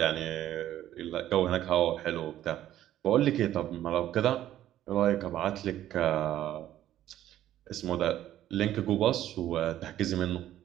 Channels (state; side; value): quieter; left; 12.6 dB